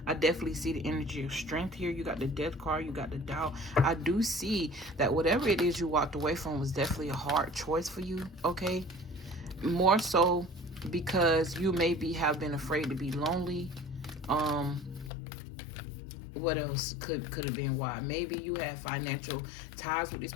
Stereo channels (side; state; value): right; drops out; at 15.1 s